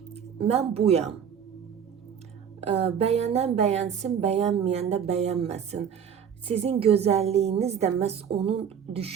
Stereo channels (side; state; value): left; quieter; 7.8 dB